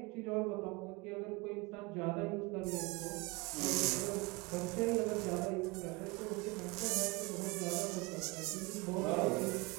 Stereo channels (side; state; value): left; quieter; 25.3 dB